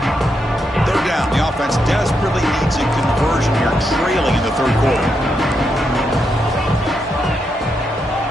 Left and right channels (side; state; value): both; normal; correlation 0.82